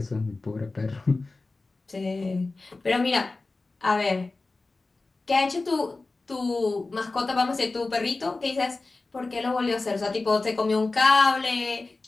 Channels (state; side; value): quieter; right; 3.5 dB